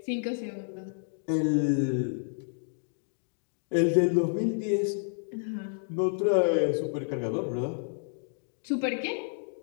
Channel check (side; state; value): right; silent; digital silence